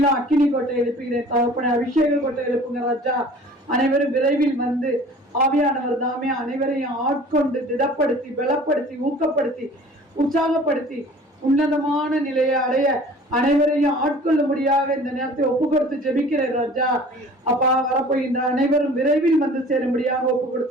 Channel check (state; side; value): normal; both; correlation 0.47